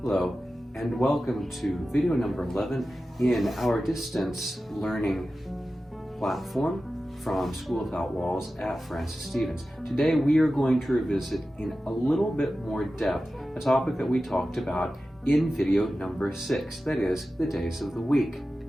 Hello, and welcome to video number 11 in our distance learning platform from School Without Walls at Francis Stevens. Today we are going to revisit in a little bit more depth a topic that we talked about in video number 6, that is, the days of the week.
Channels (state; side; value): normal; both; correlation 0.94